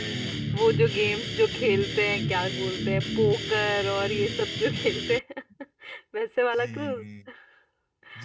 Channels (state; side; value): identical; both; correlation 1.00